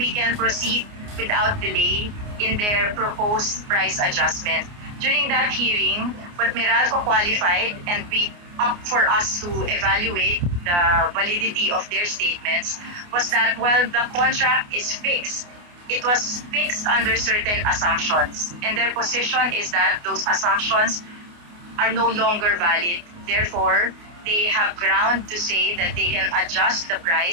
can proceed without delay in their proposed price adjustment. During that hearing, what Meralco qualified and we up for us to evaluate the validity of their statements was that while the contract is fixed, it was fixed under certain assumptions. And their position is that those assumptions are no longer valid. Therefore, they have ground to say that they can adjust the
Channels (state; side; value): late; left; 29 ms